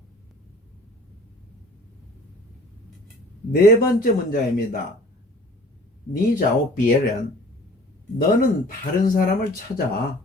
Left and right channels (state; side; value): normal; both; correlation 0.49